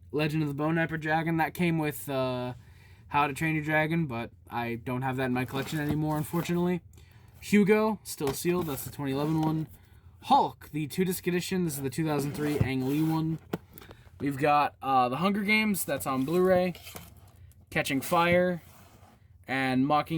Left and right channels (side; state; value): both; identical; correlation 1.00